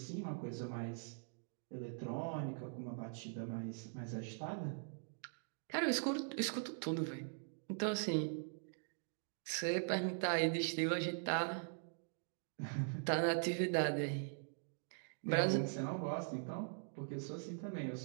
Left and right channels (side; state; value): left; silent; digital silence